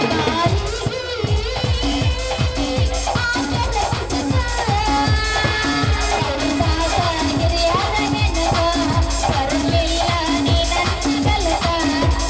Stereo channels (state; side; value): identical; both; correlation 1.00